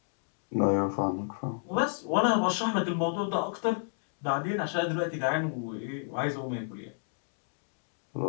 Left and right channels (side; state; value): right; silent; digital silence